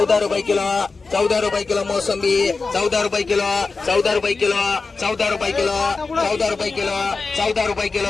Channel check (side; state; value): right; quieter; 4.1 dB